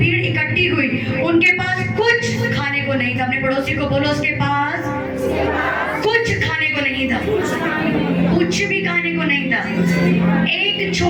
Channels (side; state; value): both; identical; correlation 1.00